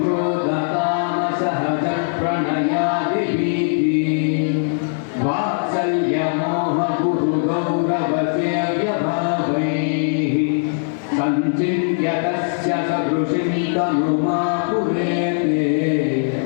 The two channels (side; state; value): right; silent; digital silence